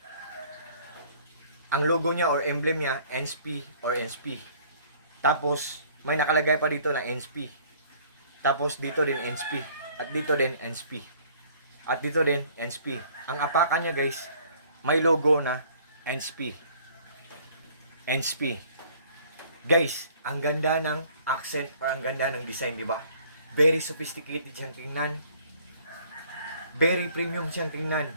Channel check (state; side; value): inverted; both; correlation -0.57